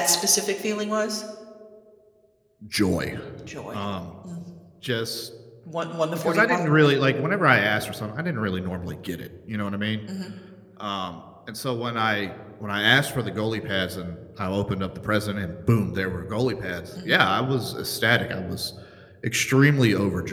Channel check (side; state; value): both; identical; correlation 1.00